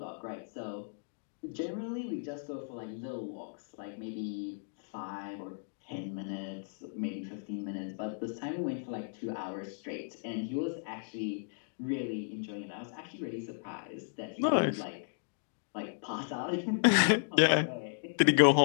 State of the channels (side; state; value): right; silent; digital silence